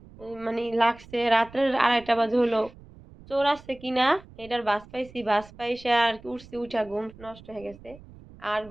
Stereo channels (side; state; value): right; noise; rumble, 21 dB below the sound